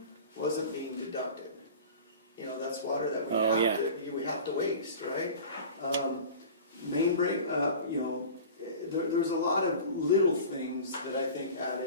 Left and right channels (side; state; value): both; inverted; correlation -0.38